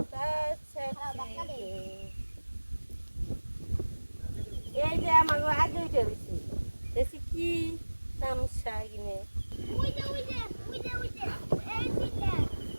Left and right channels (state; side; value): inverted; both; correlation -1.00